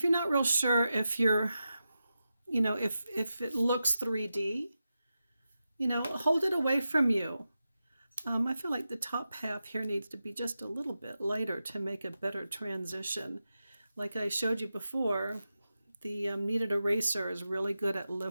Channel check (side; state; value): both; inverted; correlation -0.90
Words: you're not real sure if you're, you know, if it looks 3D, you know, hold it away from you. I feel like the top half here needs to be just a little bit lighter to make a better transition. Like I showed you before, the kneaded eraser is really good at